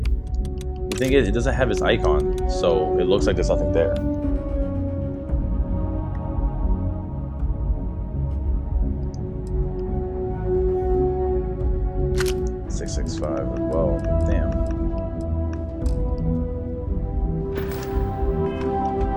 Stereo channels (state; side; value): identical; both; correlation 1.00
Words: The thing is, it doesn't have its icon, so it looks like there's nothing there. Well, damn.